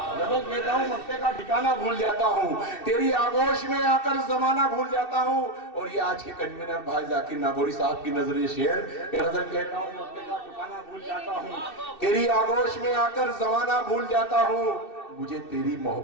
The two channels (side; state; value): right; late; 2.7 ms